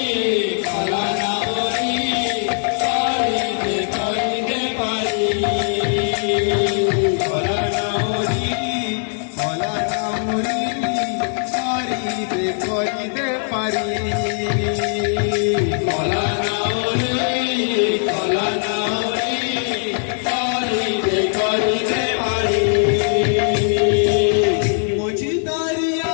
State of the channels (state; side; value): silent; right; 63 dB below the other